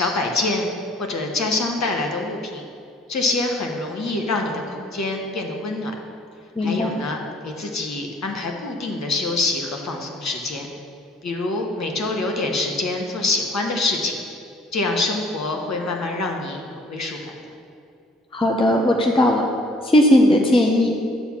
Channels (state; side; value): normal; both; correlation 0.57